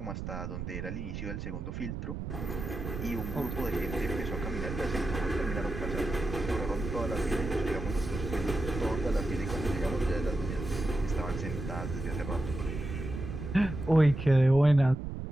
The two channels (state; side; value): noise; right; rumble, 6 dB below the sound